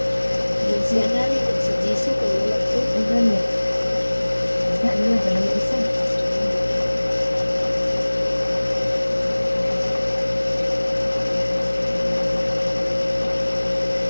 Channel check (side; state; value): both; inverted; correlation -1.00